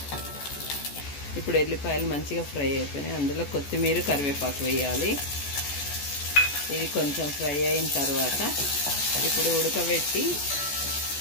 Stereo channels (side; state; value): right; late; 14 ms